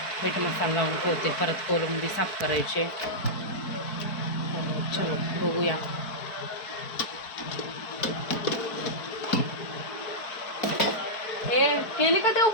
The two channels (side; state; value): right; late; 4.6 ms